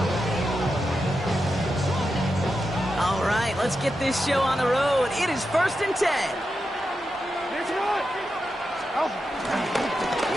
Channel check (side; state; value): both; normal; correlation 0.88